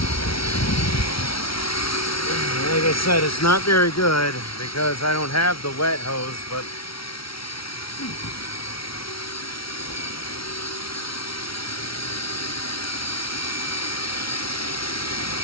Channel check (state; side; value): late; right; 0.75 ms